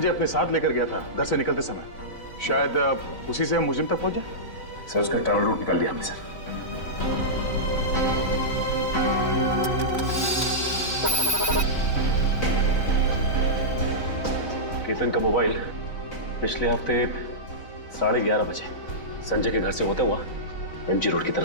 अपने साथ लेकर गया था घर से निकलते समय, शायद उसी से हम मुजिम तक पहुंच जाए। सर उसका ट्रैवल रूट निकाल लिया हमने सर। केतन का मोबाइल पिछले हफ्ते 11:30 बजे संजय के घर से होता हुआ एमजी रोड की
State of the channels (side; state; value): right; late; 4.0 ms